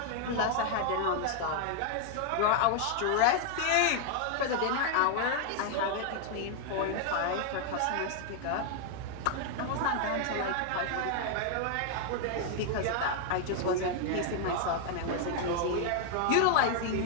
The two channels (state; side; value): different; both; correlation 0.00